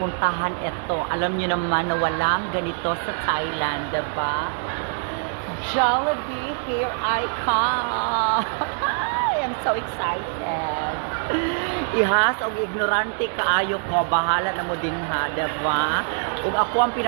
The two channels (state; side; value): silent; left; digital silence